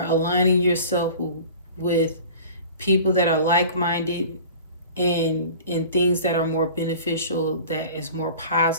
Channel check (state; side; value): inverted; both; correlation -0.42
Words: aligning yourself with people that are like-minded and things that are more beneficial, that is more